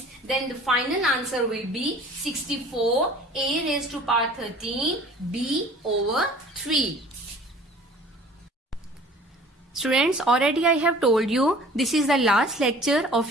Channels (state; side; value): normal; both; correlation 0.47